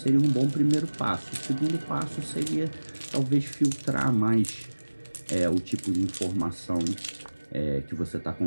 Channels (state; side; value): inverted; both; correlation -1.00